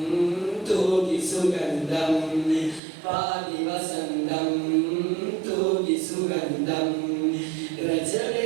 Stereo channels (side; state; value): left; drops out; at 2.8 s